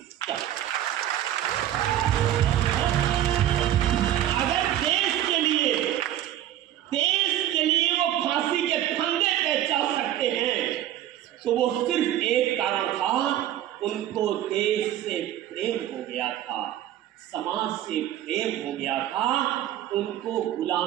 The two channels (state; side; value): quieter; left; 12.1 dB